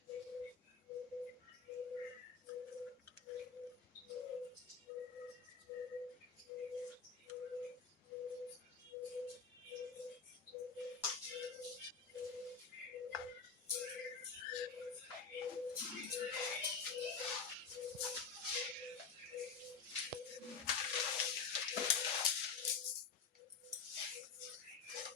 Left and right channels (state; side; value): quieter; right; 5.5 dB